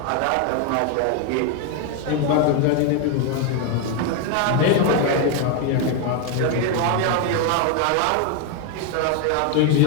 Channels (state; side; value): different; both; correlation 0.01